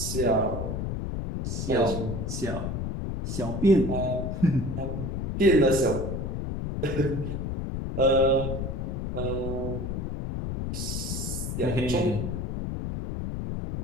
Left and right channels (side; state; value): left; noise; rumble, 3 dB below the sound